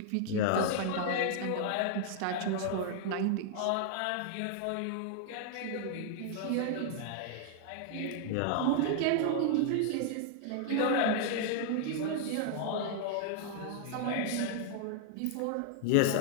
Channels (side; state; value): both; different; correlation -0.01